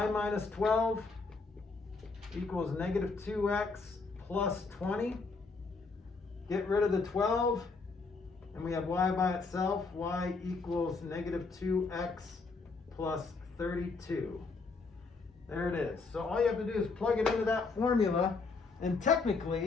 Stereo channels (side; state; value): right; quieter; 4.2 dB